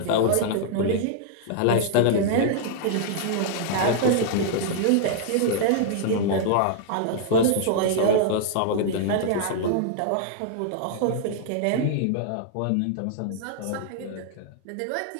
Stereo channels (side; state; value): both; different; correlation -0.01